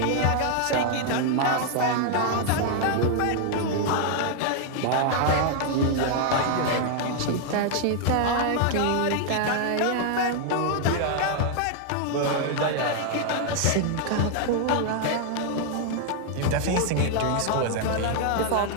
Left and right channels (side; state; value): both; different; correlation 0.00